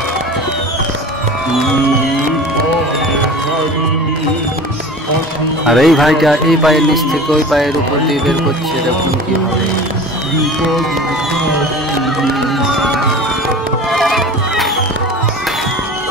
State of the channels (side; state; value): both; normal; correlation 0.38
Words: আর এই ভাইটা এই পায়ের নিচ থেকে ওই পায়ের উপর দিয়ে বের করছে, দেখুন কি হবে।